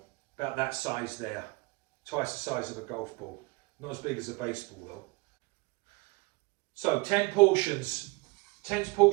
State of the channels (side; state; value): left; quieter; 25.8 dB